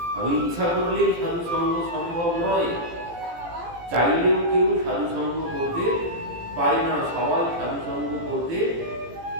আমি ইচ্ছা করলেই সাধু সঙ্গ সম্ভব নয়, চাইলেও কেউ সাধু সঙ্গ করতে পারে না। সবাই সাধু সঙ্গ করতে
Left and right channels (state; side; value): late; left; 18 ms